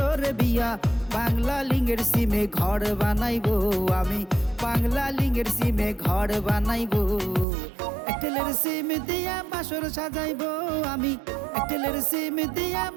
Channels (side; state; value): left; drops out; at 7.5 s